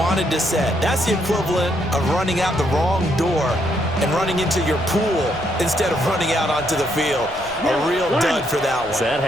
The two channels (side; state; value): left; noise; rumble, 19 dB below the sound